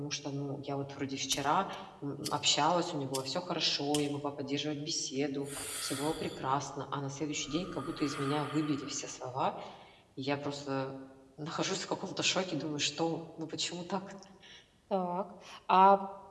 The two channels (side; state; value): both; identical; correlation 1.00